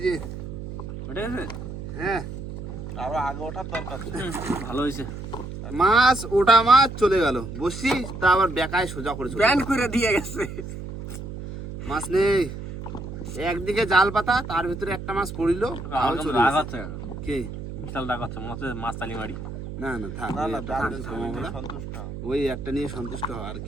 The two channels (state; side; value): noise; right; hum, 9 dB below the sound